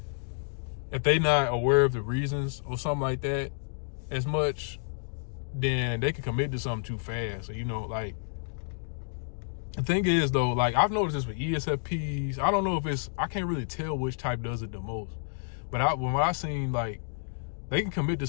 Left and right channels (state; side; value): silent; right; digital silence